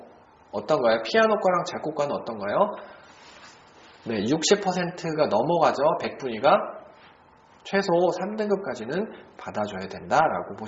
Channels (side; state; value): both; identical; correlation 1.00